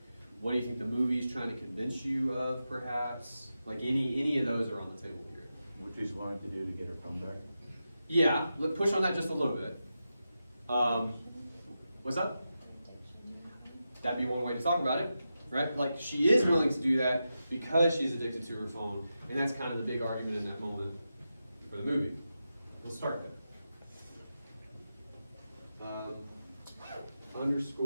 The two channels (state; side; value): inverted; both; correlation -0.89